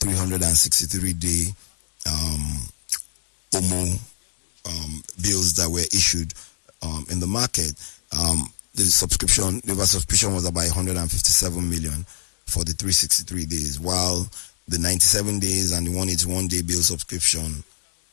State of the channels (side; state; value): right; silent; digital silence